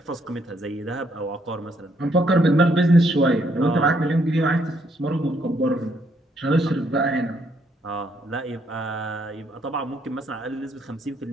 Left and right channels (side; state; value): both; normal; correlation 0.71